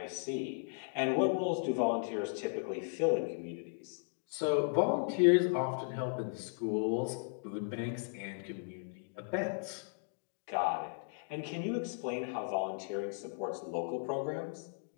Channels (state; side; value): silent; right; digital silence